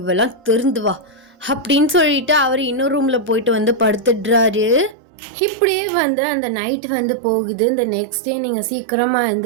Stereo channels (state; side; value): drops out; left; at 5.0 s